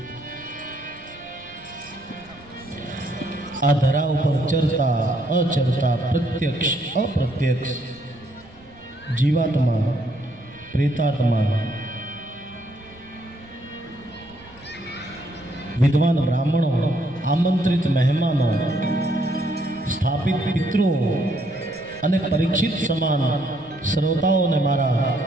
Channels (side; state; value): right; noise; rumble, 25 dB below the sound